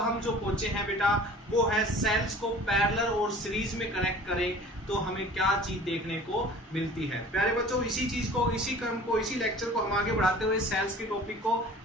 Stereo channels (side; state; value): both; normal; correlation 0.45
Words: जो पहुंचे हैं बेटा वो है सेल्स को पैरेलल और सीरीज में कनेक्ट करें तो हमें क्या चीज देखने को मिलती है। प्यारे बच्चों, इसी चीज को, इसी क्रम को, इसी लेक्चर को हम आगे बढ़ाते हुए सेल्स के टॉपिक को